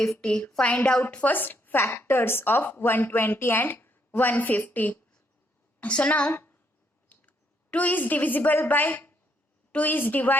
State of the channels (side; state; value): both; normal; correlation 0.73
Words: Find out first factors of 120 and 150. So now 2 is divisible by 2 is